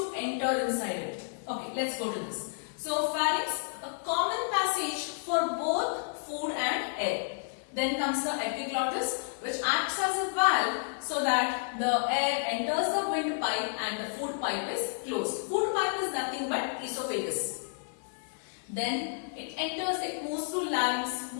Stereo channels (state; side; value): silent; right; 57 dB below the other